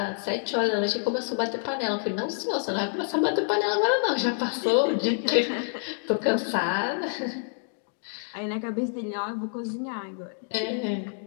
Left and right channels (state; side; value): silent; right; digital silence